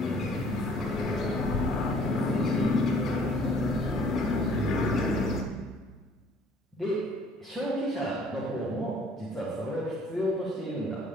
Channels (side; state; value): both; normal; correlation 0.56